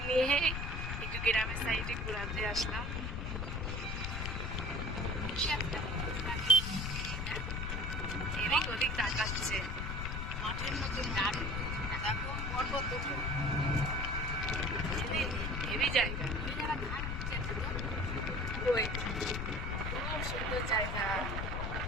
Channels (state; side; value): noise; left; rumble, 2 dB below the sound